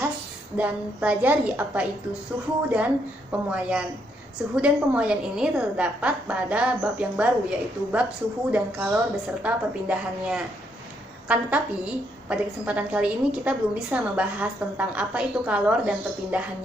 dan pelajari apa itu suhu dan pemuaian. Suhu dan pemuaian ini terdapat pada bab yang baru, yaitu bab suhu dan kalor beserta perpindahannya. Kan tetapi, pada kesempatan kali ini kita belum bisa membahas tentang apa itu kalor dan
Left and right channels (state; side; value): normal; both; correlation 0.75